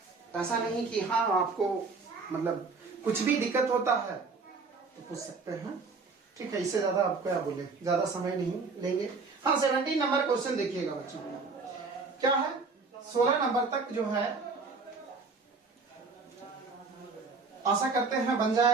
ऐसा नहीं कि हाँ आपको मतलब कुछ भी दिक्कत होता है तो पूछ सकते हैं, ठीक है। इससे ज्यादा आप क्या बोले, ज्यादा समय नहीं लेंगे। हाँ, 17 नंबर क्वेश्चन देखिएगा बच्चों, क्या है 16 नंबर तक जो है आशा करते हैं बन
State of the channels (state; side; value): quieter; left; 4.3 dB